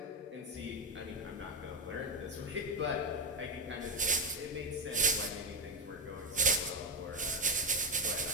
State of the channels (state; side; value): normal; both; correlation 0.08